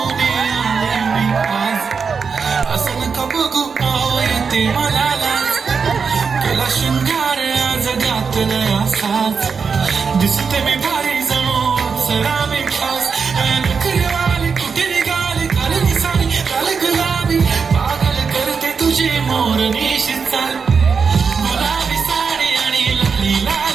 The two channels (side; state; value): left; quieter; 5.6 dB